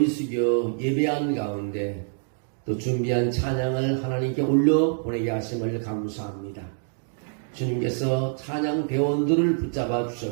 숙여 예배한 가운데 또 준비한 찬양을 하나님께 올려 보내게 하심을 감사합니다. 주님께서 찬양 대원들을 붙잡아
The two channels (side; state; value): left; silent; digital silence